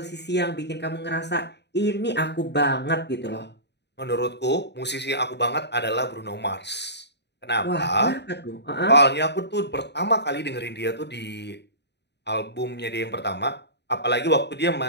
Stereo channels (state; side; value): late; right; 0.50 ms